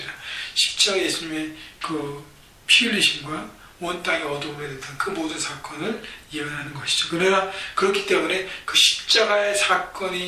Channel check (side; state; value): both; identical; correlation 1.00